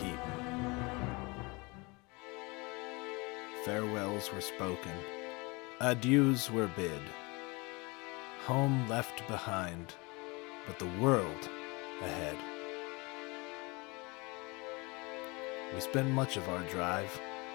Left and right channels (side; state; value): right; quieter; 26.8 dB